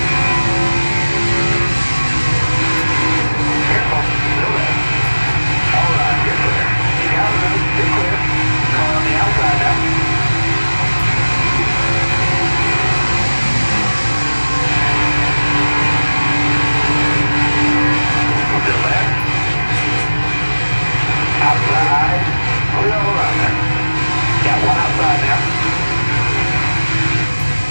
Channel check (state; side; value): inverted; both; correlation -1.00